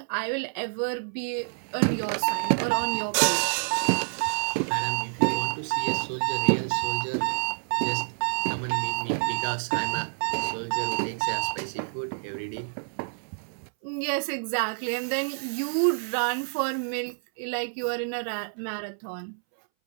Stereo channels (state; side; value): silent; left; 59 dB below the other